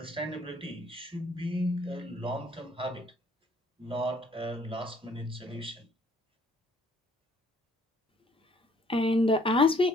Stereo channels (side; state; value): both; normal; correlation 0.62